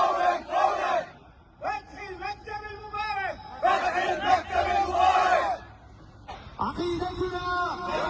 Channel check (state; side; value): identical; both; correlation 1.00